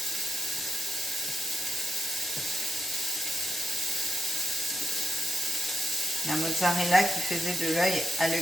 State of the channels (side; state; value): both; normal; correlation 0.86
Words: La mozzarella qui faisait de l'œil à